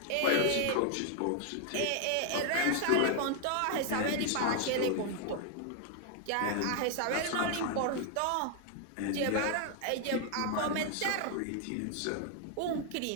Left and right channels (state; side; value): different; both; correlation 0.00